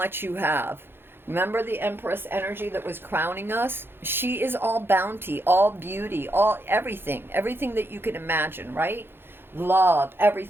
you have. Remember the Empress energy that was crowning us? She is all bounty, all beauty, all everything that you can imagine, right? Love,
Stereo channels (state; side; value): late; left; 0.10 ms